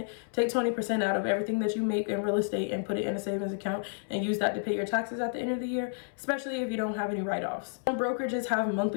Take 20% out of everything that you make in real estate and put it in a savings account and use that to pay your taxes at the end of the year, especially if you don't have any write-offs. Some brokerages have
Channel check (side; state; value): right; silent; 57 dB below the other